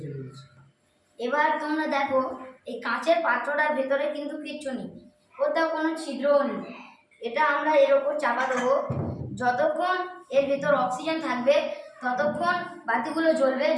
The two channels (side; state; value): both; identical; correlation 1.00